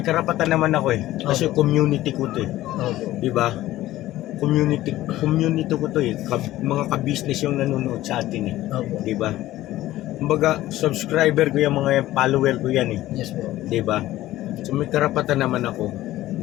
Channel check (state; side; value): quieter; right; 15.4 dB